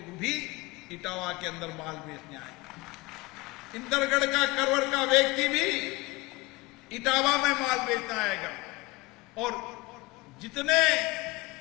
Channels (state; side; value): quieter; right; 22.7 dB